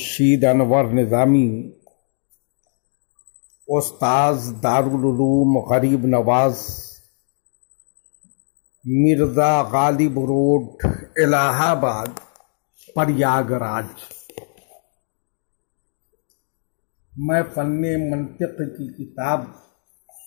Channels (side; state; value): right; silent; digital silence